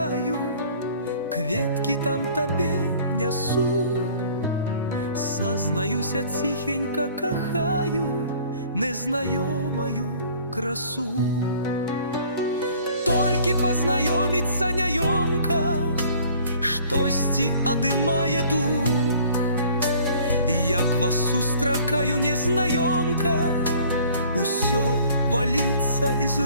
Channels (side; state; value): both; inverted; correlation -0.52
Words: кветкі там табе нясу. Сазнаюся, ціхенька кахаю незнаёмаю красу. Толькі пазнаёміцца няёмка, штосьці адымае дух. Як вас сустракаю, незнаёмка, усё валіцца из